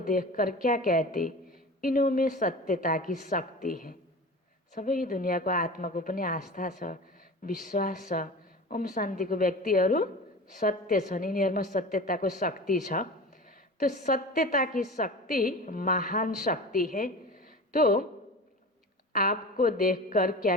क्या कहते, इनों में सत्यता की शक्ति है। सबै दुनियाँको आत्माको पनि आस्था छ, विश्वास छ। ओम शान्तिको व्यक्तिहरू सत्य छन्, यिनीहरूमा सत्यताको शक्ति छ। तो सत्यता की शक्ति महान शक्ति है। तो आपको देखकर क्या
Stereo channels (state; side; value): normal; both; correlation 0.34